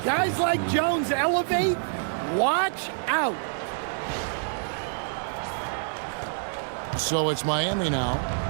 like Jones elevate, watch out. So it's Miami now.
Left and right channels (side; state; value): left; silent; digital silence